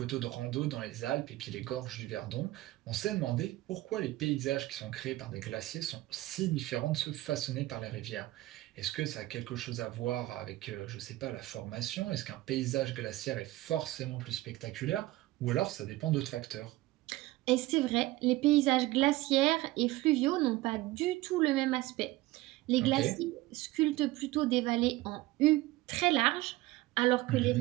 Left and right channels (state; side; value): quieter; left; 18.1 dB